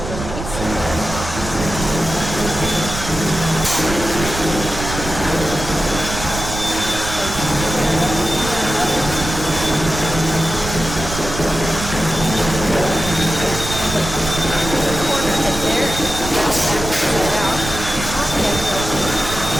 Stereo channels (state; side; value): noise; right; rumble, 7 dB below the sound